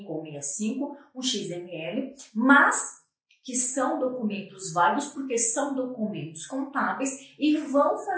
ou 65, um XML, mas que são documentos válidos porque são documentos contábeis e vão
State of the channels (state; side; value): identical; both; correlation 1.00